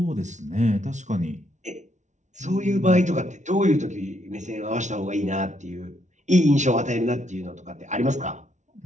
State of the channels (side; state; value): left; late; 0.35 ms